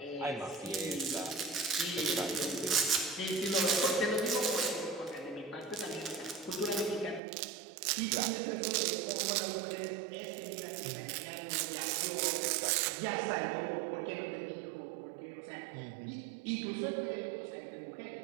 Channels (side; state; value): left; drops out; at 7.2 s